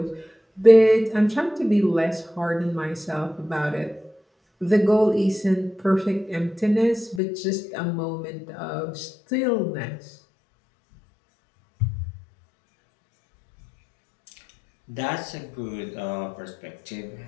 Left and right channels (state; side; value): drops out; right; at 7.2 s